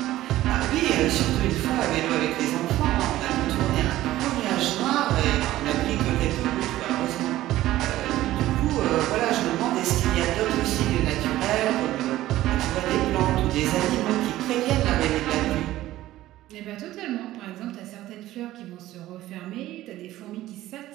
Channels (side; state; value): left; quieter; 15.1 dB